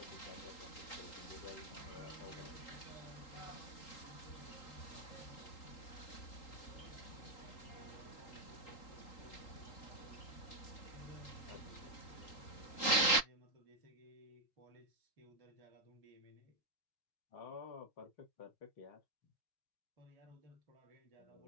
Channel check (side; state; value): right; late; 3.8 ms